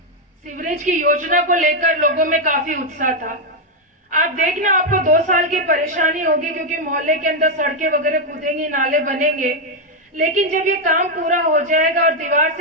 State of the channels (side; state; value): both; normal; correlation 0.02